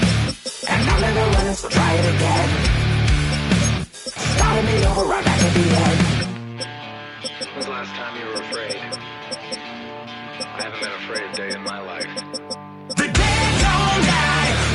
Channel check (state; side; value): identical; both; correlation 1.00